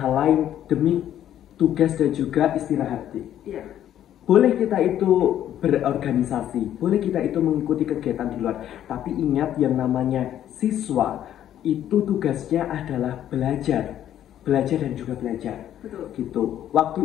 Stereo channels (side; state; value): right; quieter; 11.2 dB